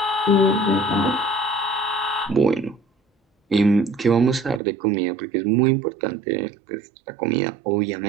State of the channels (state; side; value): drops out; left; at 4.6 s